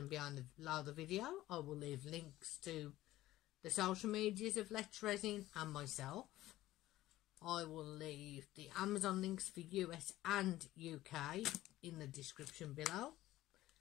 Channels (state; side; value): quieter; right; 15.6 dB